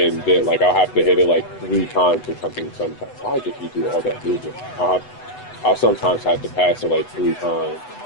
then like I'll have to hit it like 3 times or something. Sometimes why did he do all that movement? I'll sometimes have to pass it like 3 times.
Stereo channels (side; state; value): right; late; 8.0 ms